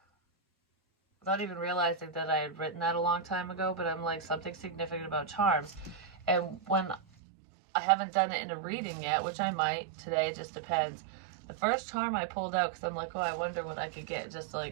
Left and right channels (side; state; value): left; drops out; at 7.0 s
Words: without even realizing that I had written that a long time ago, but I'm like, something significant about charms. And when I haven't done it in a reading yet, which I might today, it just depends. The first charm I pulled out, because I'm like, oh, I wonder what I could get, just